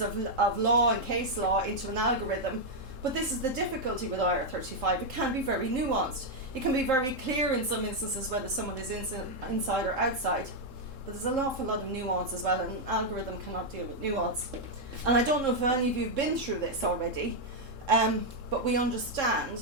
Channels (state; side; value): late; left; 3.7 ms